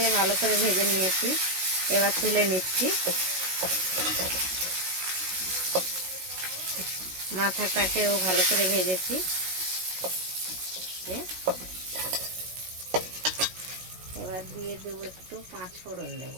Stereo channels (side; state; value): left; late; 16 ms